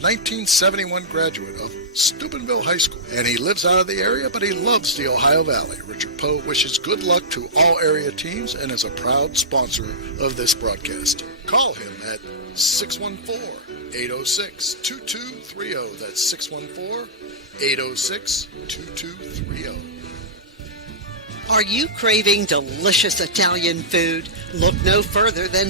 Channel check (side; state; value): both; normal; correlation -0.16